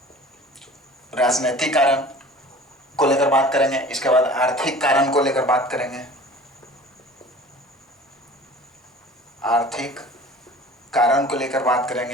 राजनीतिक कारण को लेकर बात करेंगे। इसके बाद आर्थिक कारण को लेकर बात करेंगे, आर्थिक कारण को लेकर बात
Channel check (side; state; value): both; normal; correlation 0.44